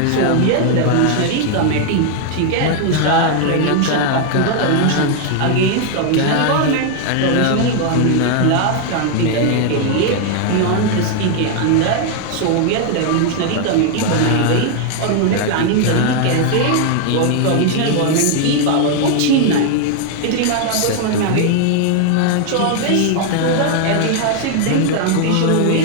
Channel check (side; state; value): both; different; correlation 0.00